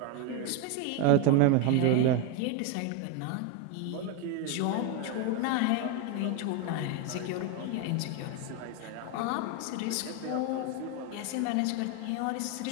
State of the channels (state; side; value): different; both; correlation 0.02